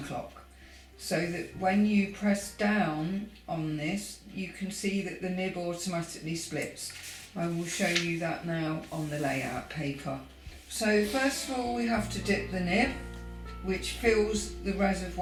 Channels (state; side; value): identical; both; correlation 1.00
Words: so that when you press down on this you can see that the nib automatically splits. I will show you that now on the layout paper. So first of all we have to dip the nib, which fills the